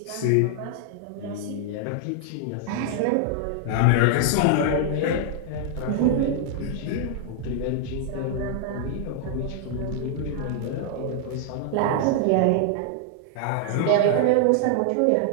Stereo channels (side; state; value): both; different; correlation 0.00